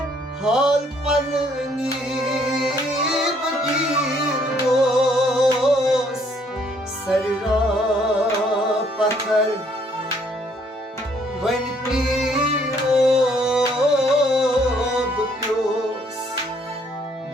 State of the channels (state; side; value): normal; both; correlation 0.65